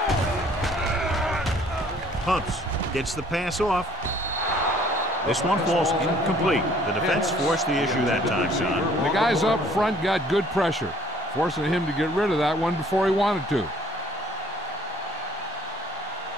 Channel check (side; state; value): both; normal; correlation 0.58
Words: Hunts gets the pass off. This one falls incomplete. The defense forced the issue that time, John. The guys up front got good pressure, forcing him to get rid of that one before he wanted to.